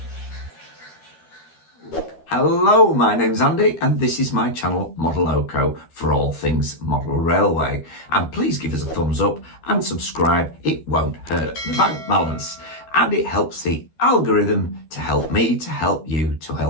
Hello, my name's Andy and this is my channel Modeloco for all things model railway. And please give us a thumbs up and subscribe, it won't hurt the bank balance. And it helps the algorithm to help me, to help you, to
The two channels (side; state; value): right; late; 13 ms